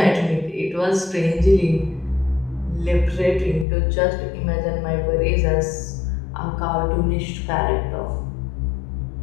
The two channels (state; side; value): drops out; right; at 3.7 s